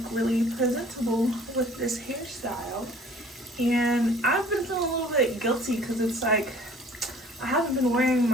really presentable with this hairstyle. And I've been feeling a little bit guilty because it's like I haven't been wearing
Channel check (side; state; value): both; normal; correlation 0.52